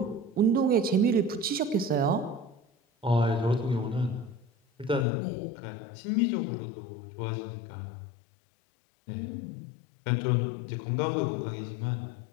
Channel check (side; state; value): right; drops out; at 5.1 s